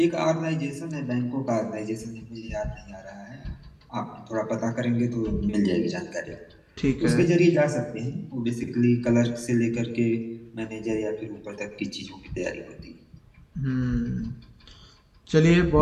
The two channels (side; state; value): both; identical; correlation 1.00